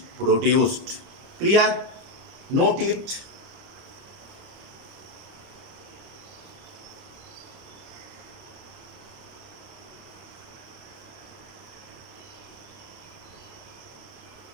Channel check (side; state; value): left; late; 30 ms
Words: produced. Clear? Note it.